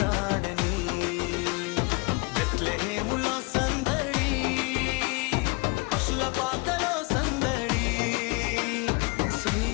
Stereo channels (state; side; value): quieter; right; 28.4 dB